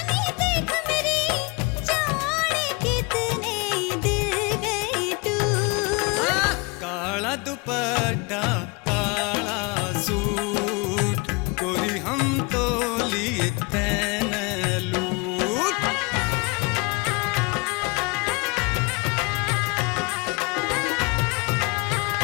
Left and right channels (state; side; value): quieter; right; 28.4 dB